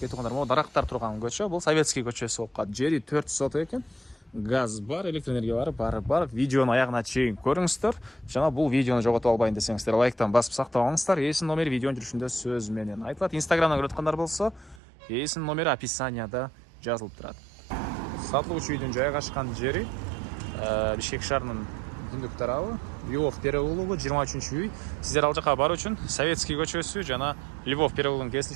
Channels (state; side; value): drops out; left; at 14.8 s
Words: туугандар, могу дарактар турган көчө. Бул Советский көчөсү болуп калат. Жери 4 соток экен. Газ бар, электр энергия бар. Видеону аягына чейин көрүңүздөр. Жана бул видеону жоготуп албайын десеңиздер, лайктан басып сактап алыңыздар. Эсин номери видеонун жүрүшүндө сөз менен айтылат. Инстаграмдан көрүп аткандар болсо, эсин номери описанияда жазылып турат. Сатылуучу үйдүн жайгашкан жери Бишкек шаарынын түндүк тарабы, Львов переулогу 23-үй. Сиздер ал жака баруу үчүн Советский көчөсү жана Львов переулогунун